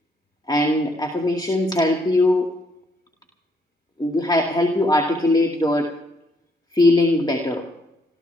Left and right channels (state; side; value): normal; both; correlation 0.71